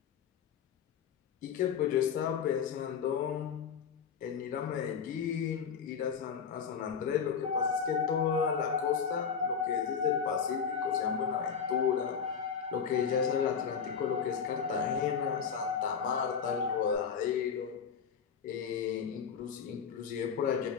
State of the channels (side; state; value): right; quieter; 6.8 dB